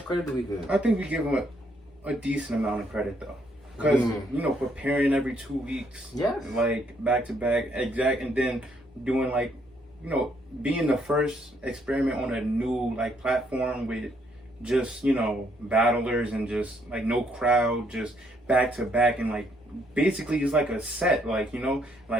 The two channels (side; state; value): both; normal; correlation 0.70